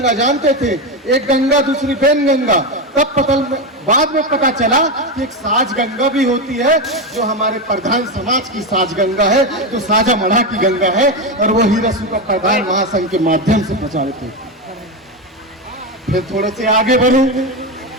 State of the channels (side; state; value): both; normal; correlation 0.13